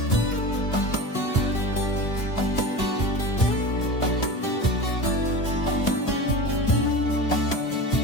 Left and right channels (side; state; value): right; late; 2.6 ms